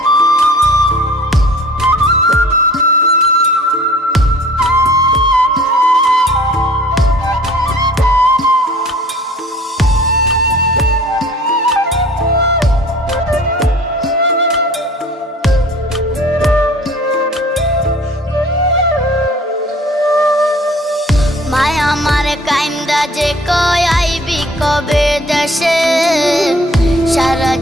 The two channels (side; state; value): both; normal; correlation 0.49